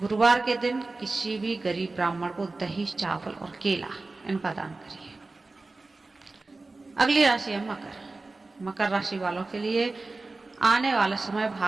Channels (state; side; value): quieter; left; 3.4 dB